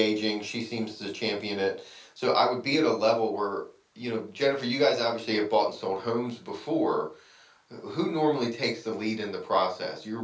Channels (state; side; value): identical; both; correlation 1.00